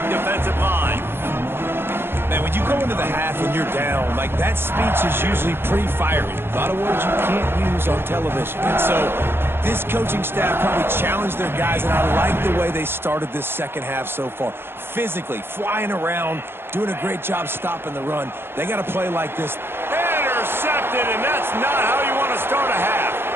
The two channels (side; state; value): left; late; 0.11 ms